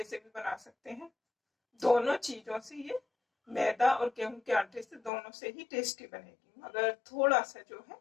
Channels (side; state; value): right; drops out; at 5.1 s